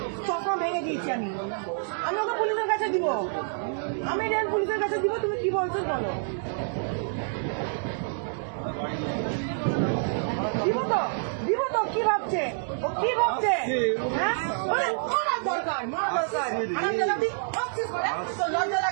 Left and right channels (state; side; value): silent; left; digital silence